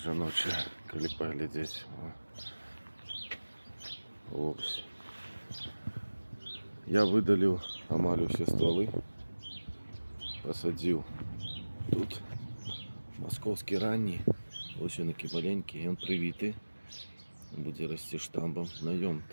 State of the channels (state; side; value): inverted; both; correlation -1.00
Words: жаночыя, калі паглядзець. Ось. Я выдаліў амаль усе стволы, посадзіў тут московский ранний, ось он такі маленькі, ён прывіты, будзе расці штамбам. На ём